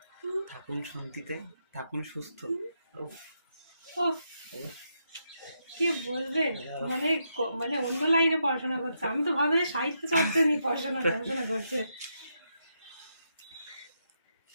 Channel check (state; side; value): inverted; both; correlation -0.81